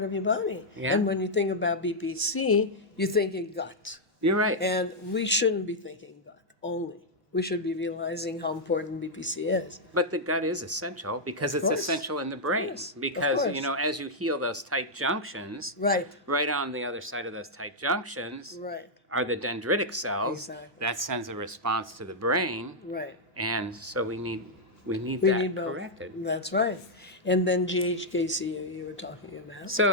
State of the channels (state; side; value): normal; both; correlation -0.05